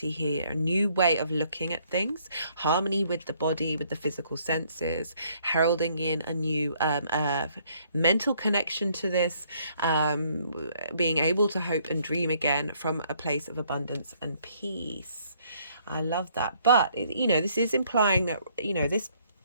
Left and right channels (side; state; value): both; inverted; correlation -0.66